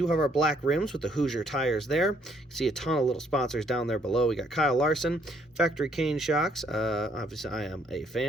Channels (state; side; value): normal; both; correlation 0.67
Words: have our black rims with the Hoosier tires there. You can see a ton of little sponsors down there below. We got Kyle Larson, Factory Cane shocks. Obviously, I am a